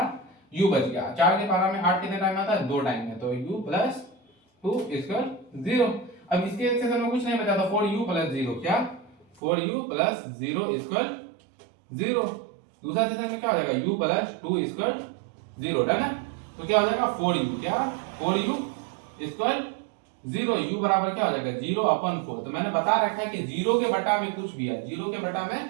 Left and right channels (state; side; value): drops out; left; at 9.4 s